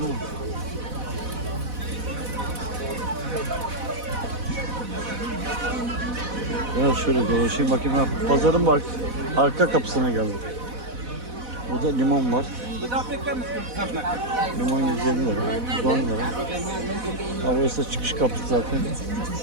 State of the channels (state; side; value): late; left; 4.1 ms